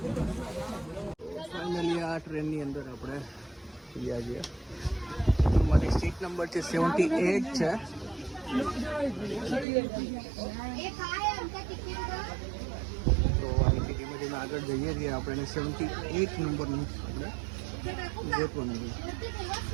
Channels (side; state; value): left; drops out; at 9.7 s